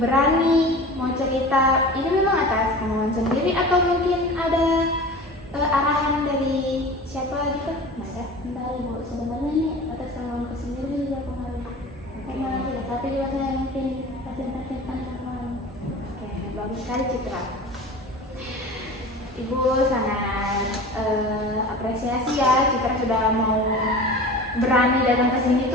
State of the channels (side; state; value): both; normal; correlation 0.37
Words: mau cerita. Ini memang atas kemauan sendiri atau mungkin ada arahan dari siapa gitu? Masa? Bentar, Bu. Sebenarnya ini atas kemauan sendiri juga kemarin. Karena tapi juga saya mungkin pasien-pasien kemarin. Oke, bagus sekali Citra. Ibu sangat apresiasi ya Citra sudah mau berani datang ke sini